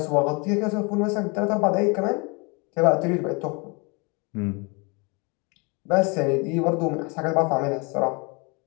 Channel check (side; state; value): right; quieter; 30.3 dB